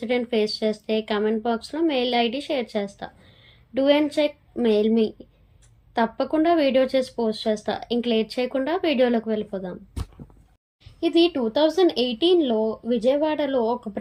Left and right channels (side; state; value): both; identical; correlation 1.00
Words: face చేస్తే కామెంట్ బాక్స్లో మెయిల్ ఐడి షేర్ చేస్తా. Do and check mail me. తప్పకుండా వీడియో చేసి పోస్ట్ చేస్తా. ఇంక లేట్ చేయకుండా వీడియోలోకి వెళ్ళిపోదాం. ఇది 2018లో విజయవాడలో ఒక